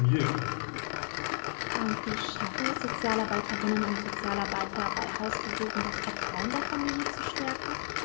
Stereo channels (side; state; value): right; silent; digital silence